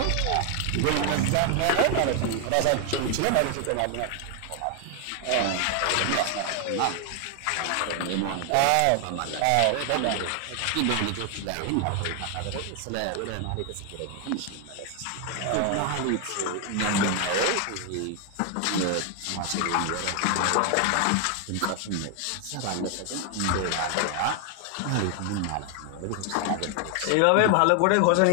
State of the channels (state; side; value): different; both; correlation 0.01